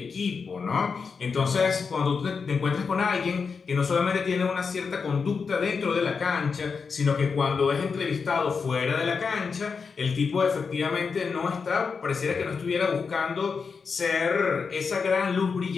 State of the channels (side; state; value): right; quieter; 5.4 dB